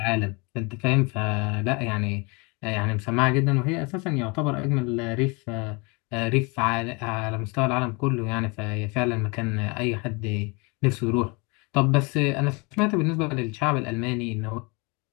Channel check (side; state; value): right; quieter; 29.3 dB